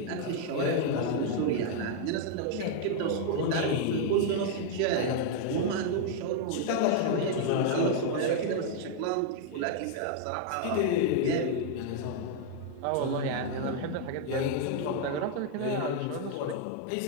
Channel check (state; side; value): different; both; correlation 0.00